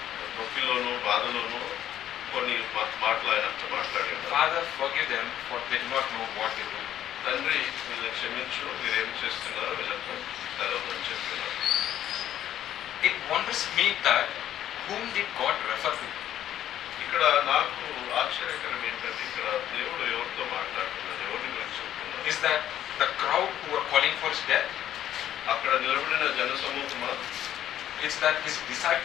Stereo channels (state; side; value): quieter; right; 11.5 dB